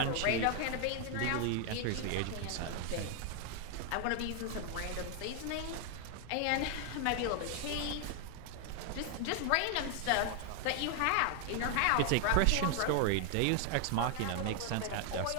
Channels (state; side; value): different; both; correlation 0.00